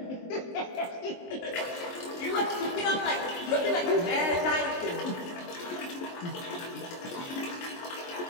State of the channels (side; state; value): right; late; 23 ms